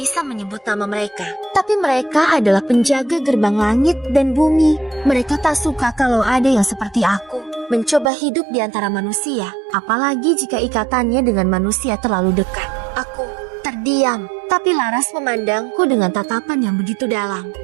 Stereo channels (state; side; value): drops out; left; at 8.1 s